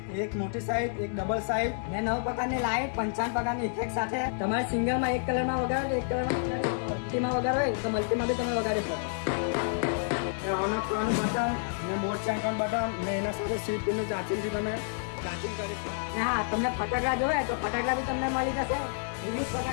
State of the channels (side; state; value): right; silent; digital silence